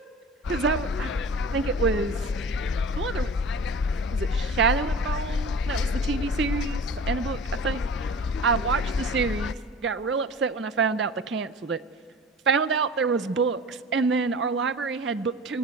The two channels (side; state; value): both; normal; correlation 0.38